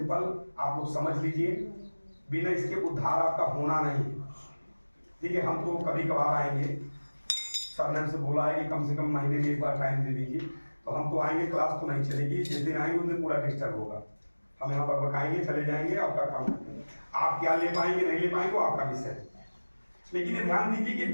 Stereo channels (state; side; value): inverted; both; correlation -1.00